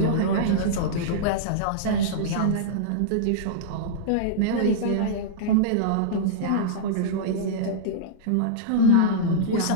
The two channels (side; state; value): both; different; correlation -0.03